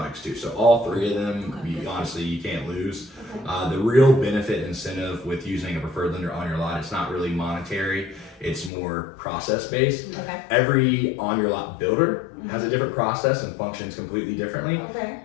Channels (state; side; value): drops out; right; at 8.7 s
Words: too. So all three of them, honestly, you can't lose. The real benefit and incentive with using a preferred lender on your lot, it's not really monetary. It's more process based. Okay. Every on your lot builder has a different process and functions completely differently. Okay.